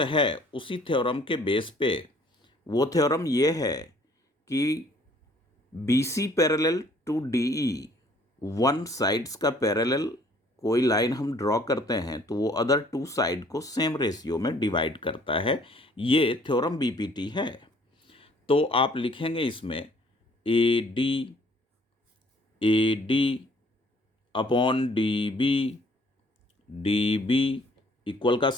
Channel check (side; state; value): both; normal; correlation 0.59